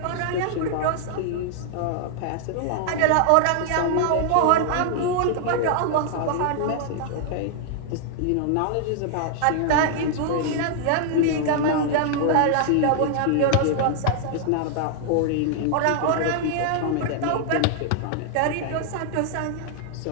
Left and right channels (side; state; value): both; different; correlation 0.00